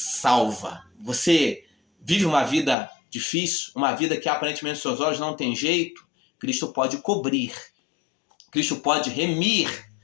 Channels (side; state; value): right; drops out; at 2.8 s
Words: Você vive uma vida difícil, uma vida que aparentemente aos seus olhos não tem jeito, Cristo pode cobrir, Cristo pode remir,